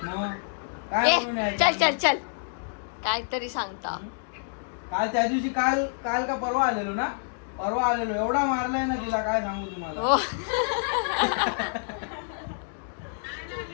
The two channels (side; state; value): right; silent; digital silence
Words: मग? काय म्हणून चल यायचं? चल चल काहीतरी सांगता. काल त्या दिवशी काल काल का परवा आलेलो ना, परवा आलेलो. एवढा मारलाय ना तिला, काय सांगू तुम्हाला. हो